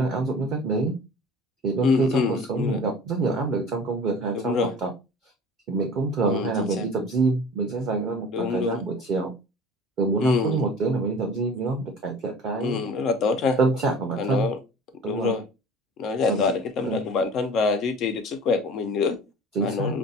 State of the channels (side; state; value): both; normal; correlation 0.42